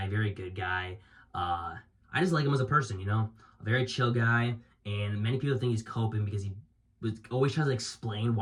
very good guy. I just like him as a person, you know? A very chill guy. And many people think he's coping because he always tries to explain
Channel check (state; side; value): identical; both; correlation 1.00